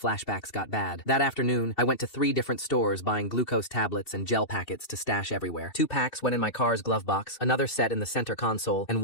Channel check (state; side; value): late; right; 2.7 ms